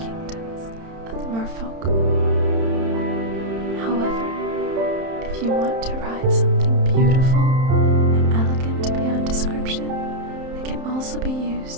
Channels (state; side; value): late; left; 31 ms